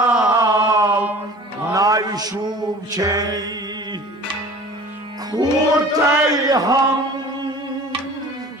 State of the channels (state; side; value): normal; both; correlation 0.43